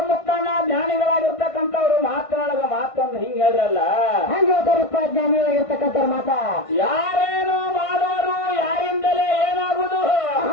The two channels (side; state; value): right; late; 1.5 ms